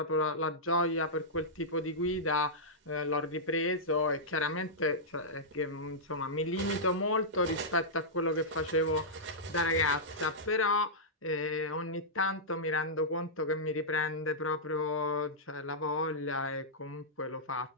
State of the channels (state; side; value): normal; both; correlation -0.12